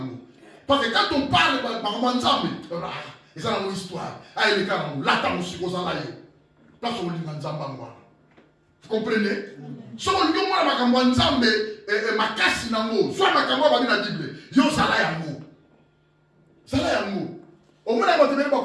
Parce que quand on parle par Manzambe, ils ont une histoire. Ah, il est là, là, là, là, vous comprenez? Si on dit que Manzambe est ma casse dans l'eau, soit ma caméra va dire la Bible, yo, ça là, yango. Ça là, yango. Au moins, on va te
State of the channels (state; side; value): identical; both; correlation 1.00